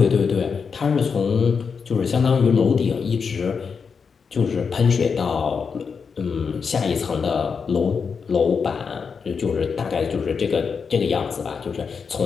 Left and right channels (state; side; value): quieter; right; 5.8 dB